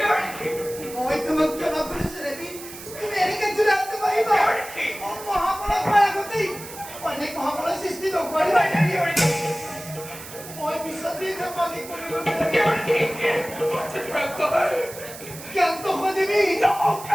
মই তোমাক জনাব পাৰিছো দেৱী তুমি এনেকে জুলাইতে পাৰিবা মহাপৰা হোৱাৰ আগতেই অনেক মহাপৰা সৃষ্টি নকৰিবা মই পিছত দি পানী কৰিব জ্ঞান্ত হোৱা দেৱী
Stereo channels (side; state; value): right; noise; hiss, 14 dB below the sound